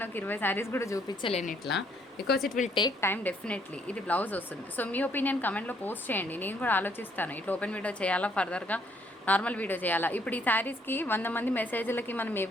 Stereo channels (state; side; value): normal; both; correlation 0.67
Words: ఒక 20 శారీస్ కూడా చూపించలేను ఇట్లా, because it will take time definitely. ఇది బ్లౌజ్ వస్తుంది. సో మీ ఒపీనియన్ కమెంట్లో పోస్ట్ చేయండి, నేను కూడా ఆలోచిస్తాను ఇట్లా ఓపెన్ వీడియో చేయాలా, ఫర్దర్గా నార్మల్ వీడియో చేయాలా. ఇప్పుడు ఈ శారీస్కి 100 మంది మెసేజ్లకి మనం